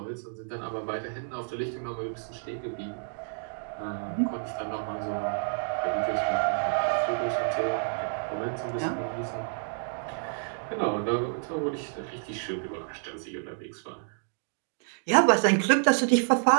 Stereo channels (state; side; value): silent; left; digital silence